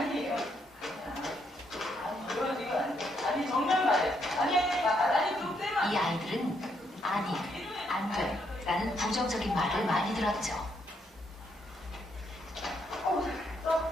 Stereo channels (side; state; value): both; normal; correlation 0.75